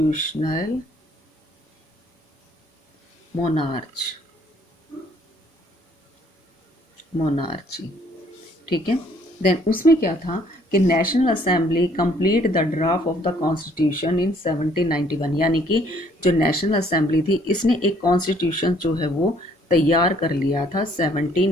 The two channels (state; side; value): normal; both; correlation 0.63